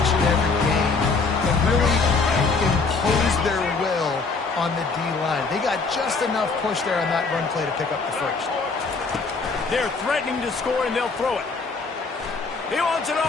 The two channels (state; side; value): quieter; right; 4.3 dB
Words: and every game and really impose their will on the D-line. They got just enough push there on that run play to pick up the first. They're threatening to score, and they'll throw it. He wants it